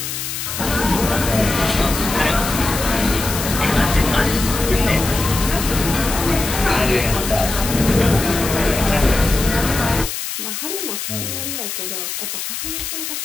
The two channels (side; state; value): left; noise; hiss, 5 dB below the sound